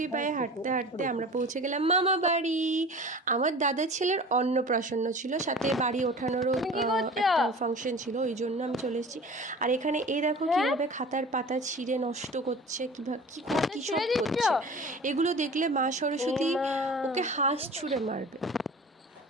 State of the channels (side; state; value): both; normal; correlation 0.40